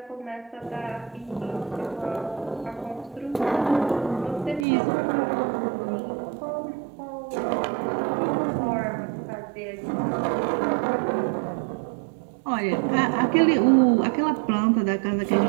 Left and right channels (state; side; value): drops out; left; at 4.7 s